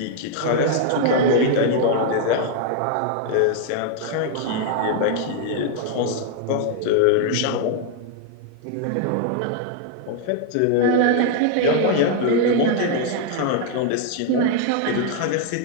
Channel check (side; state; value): both; different; correlation 0.00